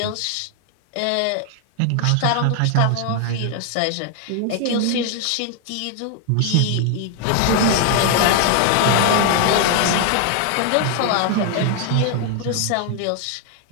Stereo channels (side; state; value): both; different; correlation 0.00